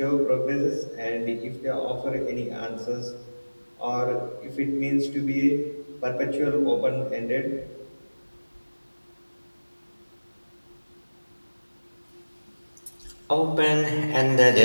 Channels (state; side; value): inverted; both; correlation -1.00